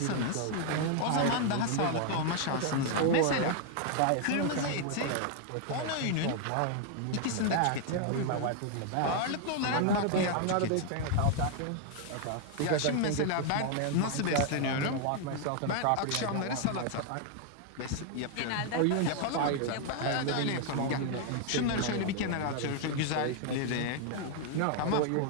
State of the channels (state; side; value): different; both; correlation 0.00